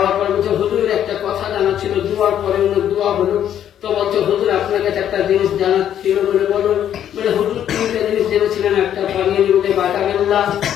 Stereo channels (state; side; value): quieter; right; 10.2 dB